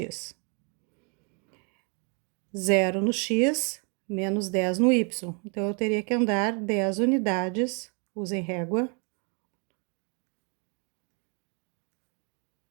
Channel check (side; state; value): left; quieter; 36.4 dB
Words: 0 no X, menos 10 no Y. Então, eu teria que andar 10 unidades, usem régua.